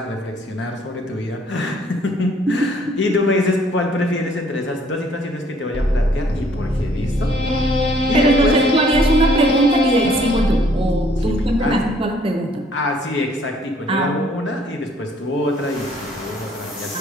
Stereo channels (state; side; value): normal; both; correlation 0.62